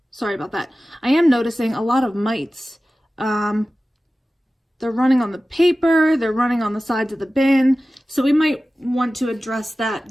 sorry about that, I am noticing a lot of mites. They're running on the paper, they're running on the sides of the bin, so we might want to address that.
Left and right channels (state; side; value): normal; both; correlation 0.96